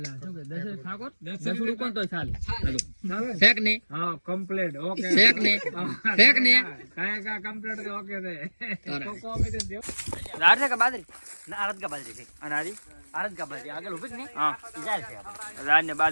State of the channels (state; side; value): inverted; both; correlation -1.00